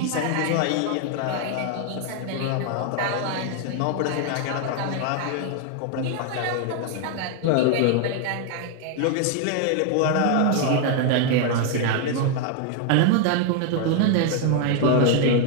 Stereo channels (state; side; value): different; both; correlation 0.00